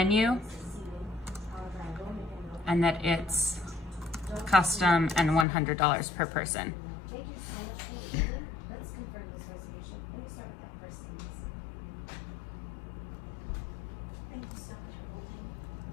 and that it's custom and $100 per person.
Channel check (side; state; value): right; drops out; at 5.5 s